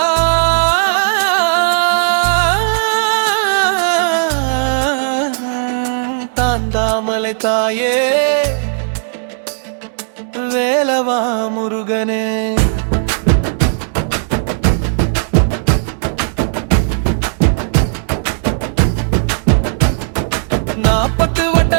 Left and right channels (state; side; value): silent; left; digital silence